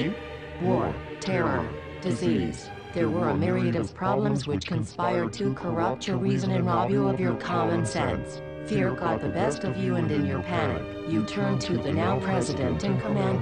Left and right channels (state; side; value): identical; both; correlation 1.00